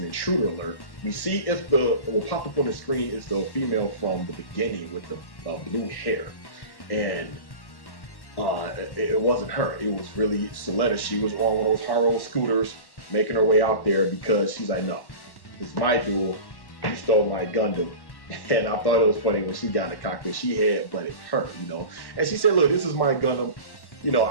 an intruder alert. We see if what will pop up on the screen is the female from the beginning with the blue hair. And it wasn't her. It was really Suletta. She was on one of those Haro scooters making her way out there because she's like, "No, it's my duel. You stole my Gundam." And I thought it was funny when she got in the cockpit. She headbutted her, you know. And she said, "Look, this is my Gundam. You know,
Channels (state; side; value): late; right; 1.1 ms